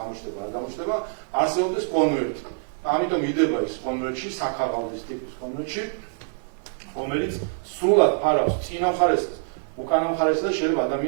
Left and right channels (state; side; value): silent; left; digital silence